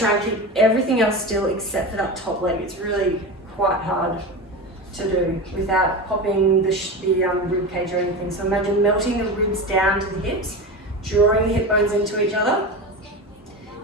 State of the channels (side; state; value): both; normal; correlation 0.25